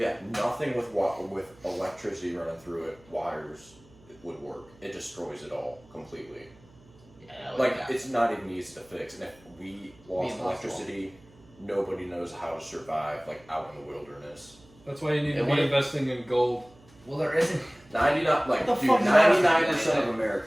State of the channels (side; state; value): right; noise; hum, 27 dB below the sound